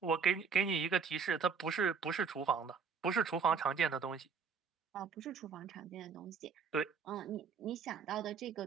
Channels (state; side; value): quieter; left; 5.9 dB